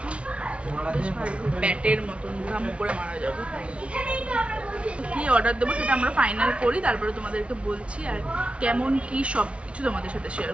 বেশ ভালো, ব্যাটের মতন ঘাম করে মারা যাবে। কি অর্ডার দেবো সেটা আমরা ফাইনাল করি, তারপরে তোমাদেরকে বলছি আর কেমন কি সব কিছু তোমাদের সাথে শেয়ার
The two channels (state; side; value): late; left; 0.060 ms